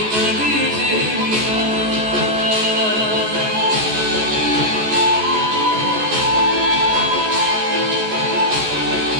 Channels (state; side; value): late; left; 14 ms